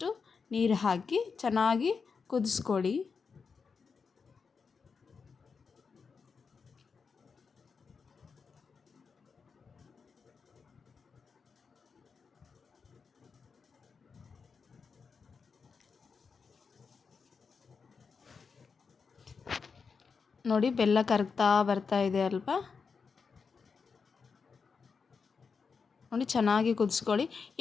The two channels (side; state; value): right; quieter; 5.4 dB